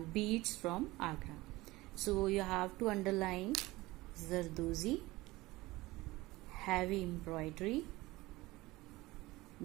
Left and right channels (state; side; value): quieter; left; 19.8 dB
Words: beads from Agra. So you have to underline Zardozi, heavy embroidery,